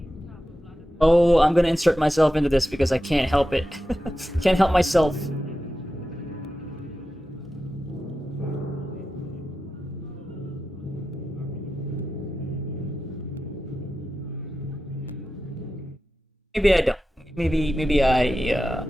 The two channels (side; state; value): both; normal; correlation 0.92